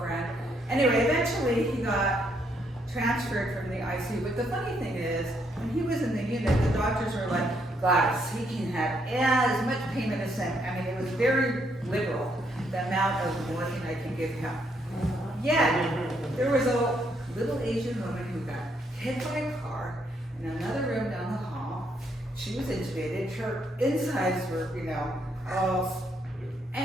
Anyway, eventually he got transferred from the ICU. But the funny thing is, when he was in the unit, the doctors were like, Gladys, he can have as much pain medicine. I mean, it was very liberal, the amount of morphine I can give him. Yet, there was a little Asian woman who got hit by a car in another room down the hall. She was intubated. Her insides were, all,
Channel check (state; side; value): normal; both; correlation 0.73